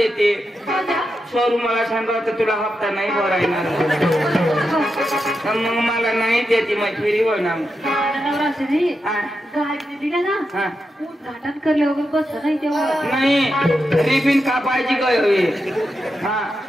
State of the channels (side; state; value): both; normal; correlation 0.87